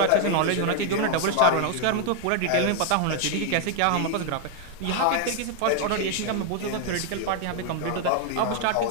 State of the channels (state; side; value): different; both; correlation 0.00